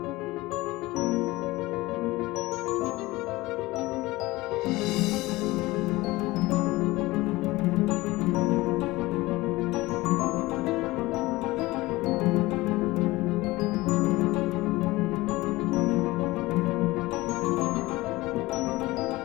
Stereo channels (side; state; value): right; quieter; 20.0 dB